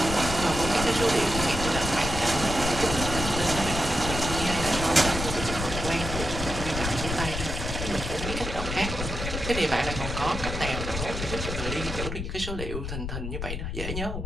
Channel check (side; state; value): left; noise; rumble, 5 dB below the sound